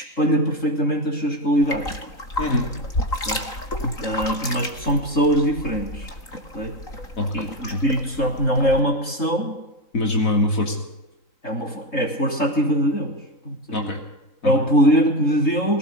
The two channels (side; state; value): right; late; 3.9 ms